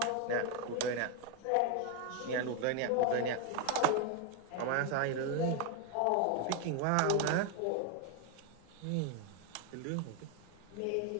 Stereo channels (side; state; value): both; different; correlation 0.01